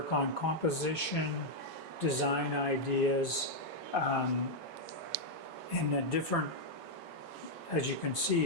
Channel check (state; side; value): normal; both; correlation -0.02